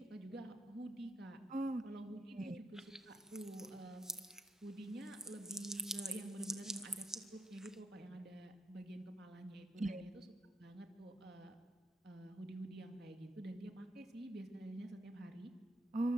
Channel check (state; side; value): normal; both; correlation 0.74